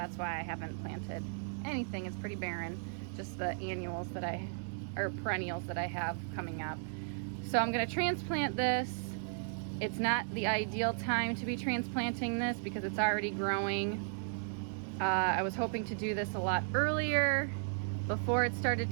why I haven't planted anything. It's pretty barren, just the annuals that perennials that I have coming up. So I'm gonna transplant this. It's not the ideal time to be transplanting this because it's already growing. I was hoping to do this a lot earlier, before it started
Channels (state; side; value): silent; left; digital silence